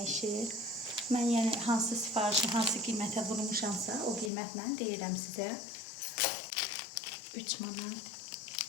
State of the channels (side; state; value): right; drops out; at 4.3 s